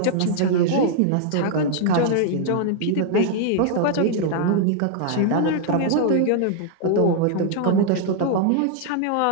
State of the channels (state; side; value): different; both; correlation -0.01